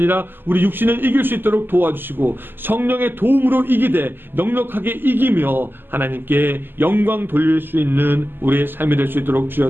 우리 육신을 이길 수 있도록 도와주시고 성령의 도움으로 이기되 넉넉하게 이기며 하나님께 영광 돌릴 수 있는 우리의 삶이 될 수 있도록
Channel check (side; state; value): left; late; 0.096 ms